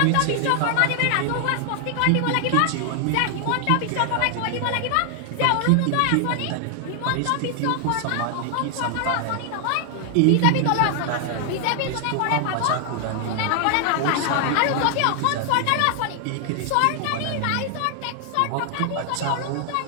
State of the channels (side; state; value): both; different; correlation 0.00